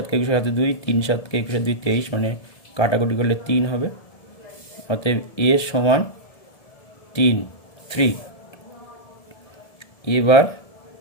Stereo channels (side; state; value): right; late; 1.7 ms